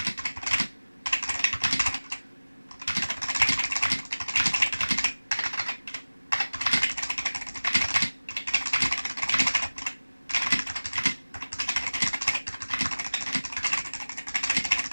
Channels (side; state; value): both; inverted; correlation -1.00